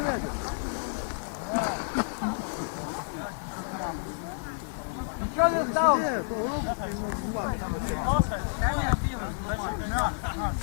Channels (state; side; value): silent; right; digital silence